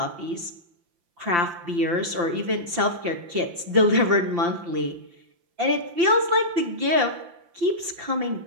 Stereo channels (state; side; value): late; left; 5.8 ms